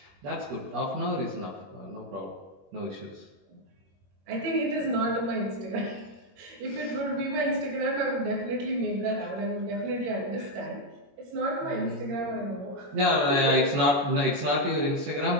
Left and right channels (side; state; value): left; late; 21 ms